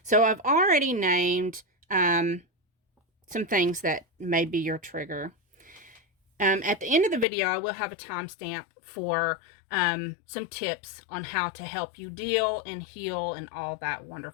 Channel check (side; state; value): right; drops out; at 7.2 s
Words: So I've already named some things that may be your trigger. At the end of the video, I will have a timestamp for some tips on how to help you deal and heal and all that